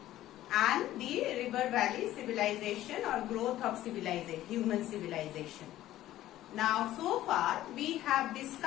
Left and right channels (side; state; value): right; quieter; 14.1 dB